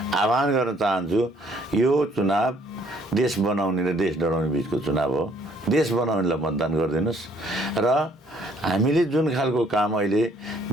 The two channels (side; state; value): both; normal; correlation 0.63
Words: आह्वान गर्न चाहन्छु। यो चुनाव देश बनाउने र देश डराउने बिचको चुनाव हो। देश बनाउनेलाई मतदान गरिदिनुहोस्। र हामीले जुन खालको काम अहिले